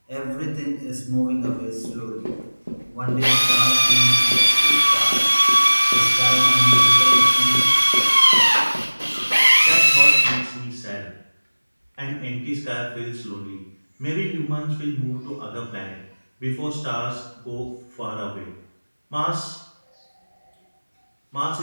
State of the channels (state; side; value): inverted; both; correlation -1.00